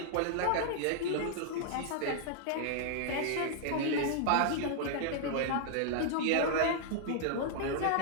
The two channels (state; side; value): different; both; correlation -0.01